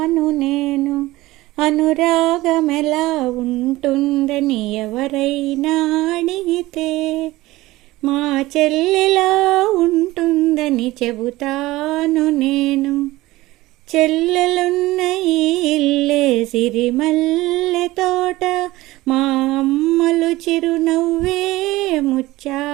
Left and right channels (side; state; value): left; quieter; 18.5 dB